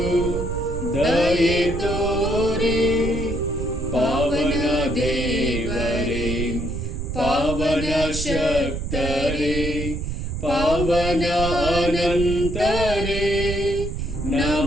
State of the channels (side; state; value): right; noise; rumble, 4 dB below the sound